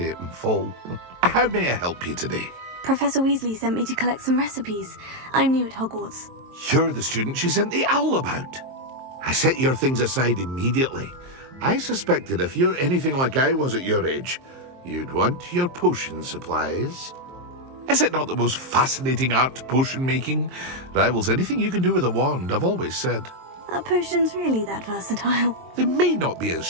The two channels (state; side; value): late; left; 23 ms